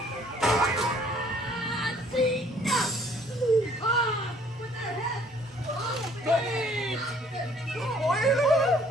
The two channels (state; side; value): normal; both; correlation 0.59